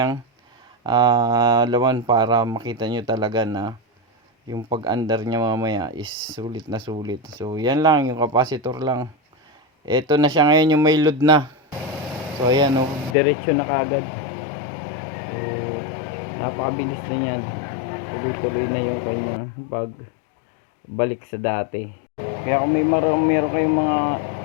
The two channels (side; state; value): right; drops out; at 13.2 s